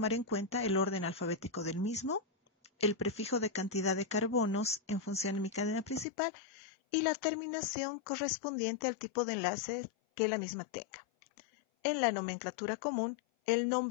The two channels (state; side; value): drops out; right; at 6.1 s